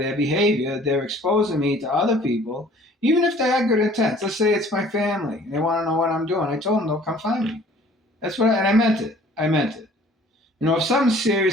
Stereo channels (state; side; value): normal; both; correlation 0.53